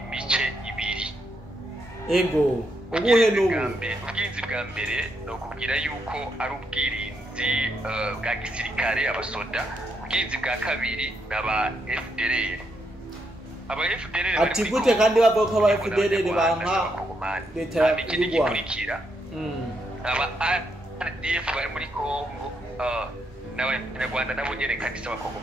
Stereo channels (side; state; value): both; normal; correlation 0.79